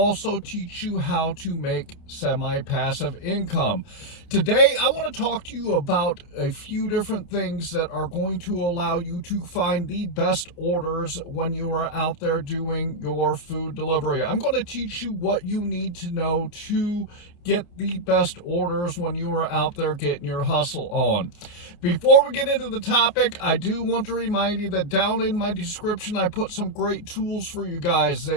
teach you how to make semi-passive income. Today I want to talk to you about a few different things that are going to allow you to find the best orders when you are out there doing your food delivery. I'm going to teach you what you need to know to get the best orders when you are out there getting your hustle on. Before we get into the topic, I do want to remind you that down in my description, I put some great tools for you guys.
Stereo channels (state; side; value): late; right; 29 ms